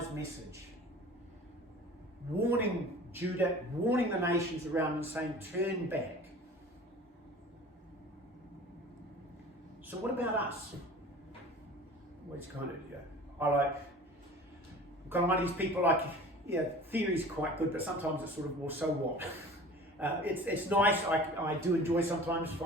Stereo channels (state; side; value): normal; both; correlation 0.42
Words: message. Warning Judah, warning the nations around and saying, turn back. So what about us? Well, it's kind of, I'm kind of one of these people theory's quite good, but sometimes it's sort of, well, so what? It's nice. I do enjoy sometimes